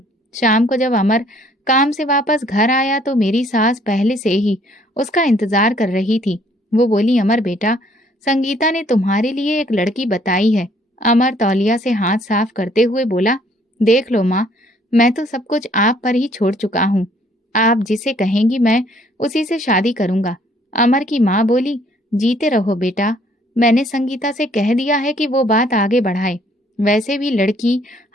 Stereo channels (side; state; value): both; normal; correlation 0.63